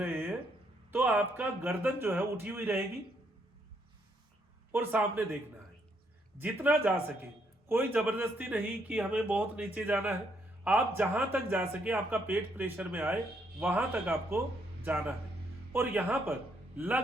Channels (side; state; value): both; normal; correlation 0.73